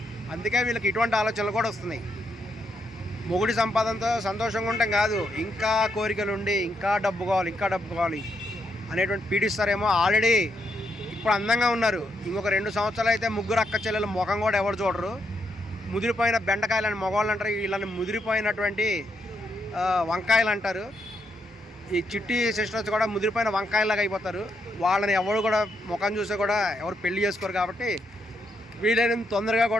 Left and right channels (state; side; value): normal; both; correlation 0.79